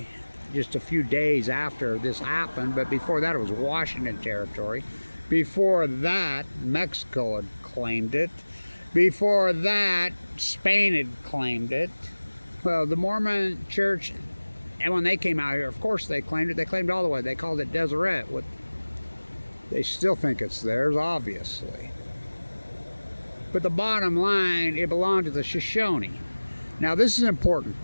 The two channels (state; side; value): inverted; both; correlation -1.00